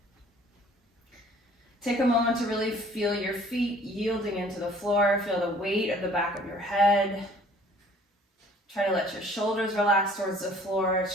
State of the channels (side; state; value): both; normal; correlation 0.54